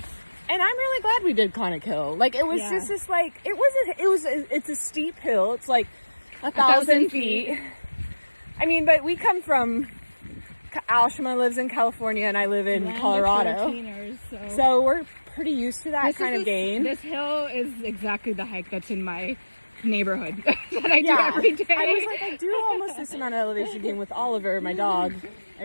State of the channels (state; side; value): inverted; both; correlation -1.00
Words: And I'm really glad we did Conic Hill. Like, it was just this, like, it's a steep hill. It's like 1,000 feet. I mean, but we come from, Ashima lives in California and I live in Land of Colorado. 14ers, So we're pretty used to that kind of gain. This hill is exactly the hike that's in my neighborhood that I do every day. I was like, I do almost listen on elevation gain with Oliver, my dog,